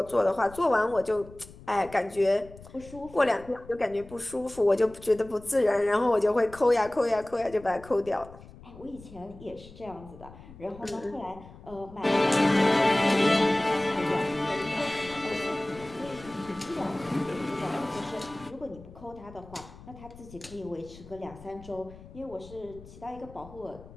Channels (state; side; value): noise; left; rumble, 19 dB below the sound